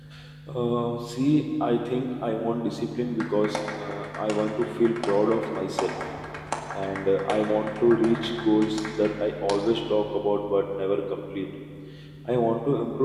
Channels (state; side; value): identical; both; correlation 1.00